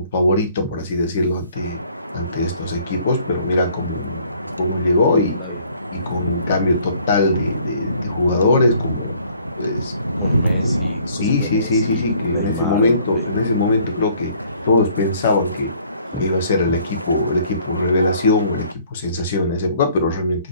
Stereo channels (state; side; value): inverted; both; correlation -0.59